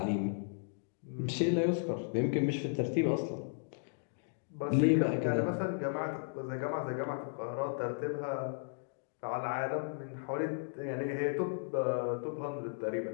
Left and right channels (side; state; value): right; silent; digital silence